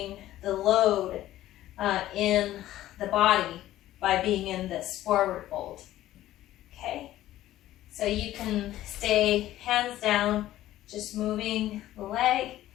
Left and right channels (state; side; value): quieter; right; 14.2 dB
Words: the load in the body by being in this forward fold. Okay, so you can stay hands down, just moving the leg,